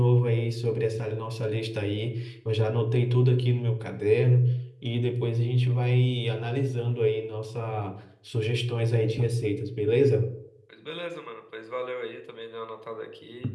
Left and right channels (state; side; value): identical; both; correlation 1.00